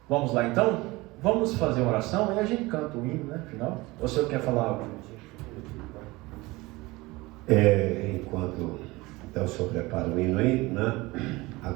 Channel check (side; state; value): left; quieter; 21.8 dB